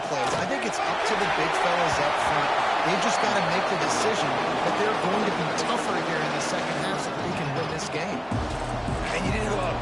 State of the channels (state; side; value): identical; both; correlation 1.00